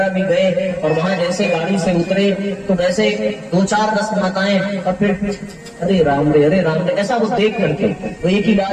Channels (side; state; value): both; identical; correlation 1.00